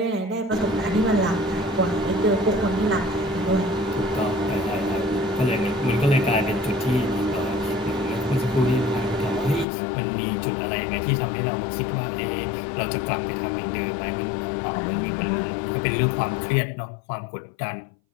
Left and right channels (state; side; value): drops out; right; at 9.7 s